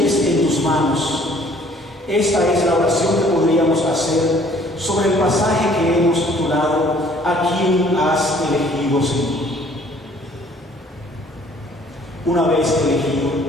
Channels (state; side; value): normal; both; correlation 0.57